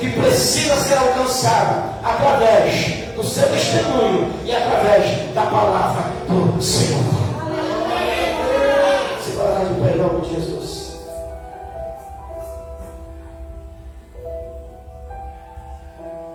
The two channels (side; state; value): both; identical; correlation 1.00